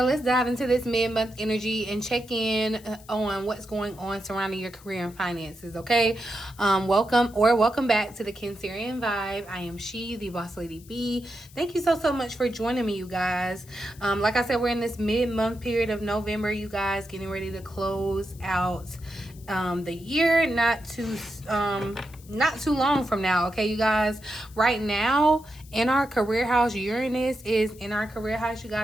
let's dive into this mid-month energy and check in on what's going on surrounding your career and finances, okay? Welcome back to the Cancerian Vibe. I am she, the boss lady B. Thank you so much for joining me, you guys. Like I said, we're in this mid-month period of November, you guys, getting ready to close out the year, not too long from now, okay, you guys. Right now in our career house, Uranus is in our career house, you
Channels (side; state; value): left; noise; hiss, 23 dB below the sound